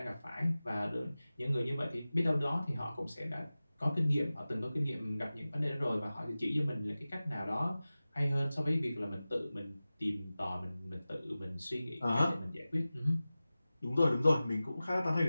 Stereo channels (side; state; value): both; inverted; correlation -0.96